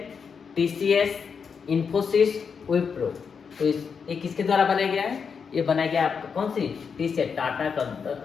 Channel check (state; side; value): quieter; right; 6.1 dB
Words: टीसीएस, इन्फोसिस, विप्रो। तो ये किसके द्वारा बनाया गया है, ये बनाया गया आपका कौन सी, टीसीएस, टाटा